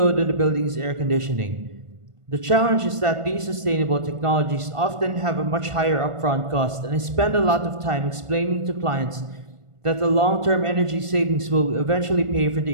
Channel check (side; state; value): left; late; 1.5 ms